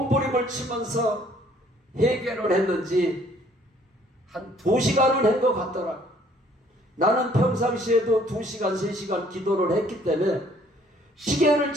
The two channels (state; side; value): normal; both; correlation 0.60